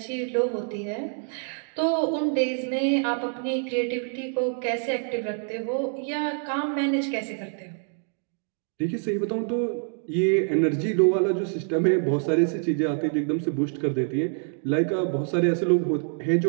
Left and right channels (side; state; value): left; silent; 56 dB below the other